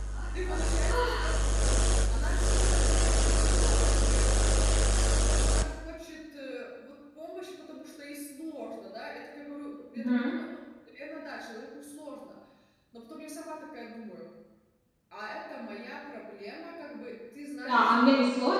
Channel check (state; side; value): identical; both; correlation 1.00